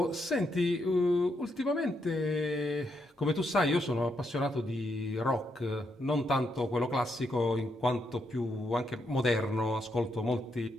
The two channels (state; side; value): normal; both; correlation 0.79